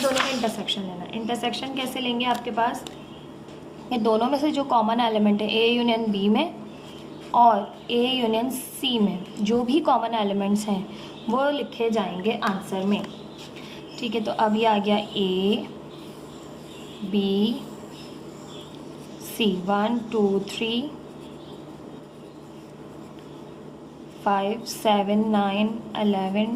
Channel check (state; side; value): identical; both; correlation 1.00